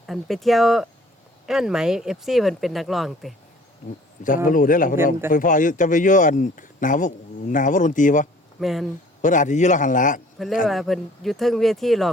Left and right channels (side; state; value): both; normal; correlation 0.53